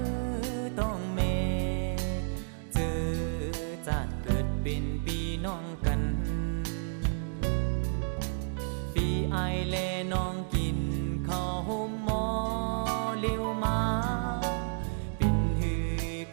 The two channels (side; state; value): left; silent; digital silence